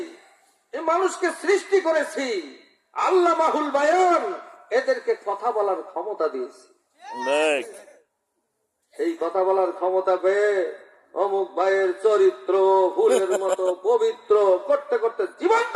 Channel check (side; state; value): both; identical; correlation 1.00